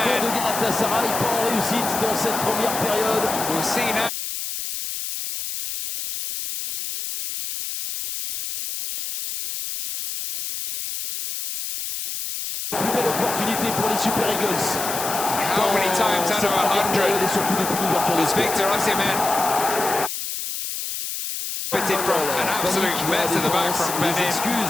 de Galatasaray, pas en réussite dans cette première période. We'll see now. Plus belle opportunité pour les Super Eagles. How many times out of 100 et surtout depuis l'ouverture is Victor Osimhen fitted from an absolute mess in the back from Les Benin.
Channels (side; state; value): left; noise; hiss, 5 dB below the sound